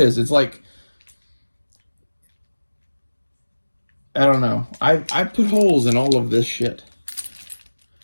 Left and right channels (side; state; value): both; inverted; correlation -1.00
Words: It's like, I don't know. I put holes in all of this shit.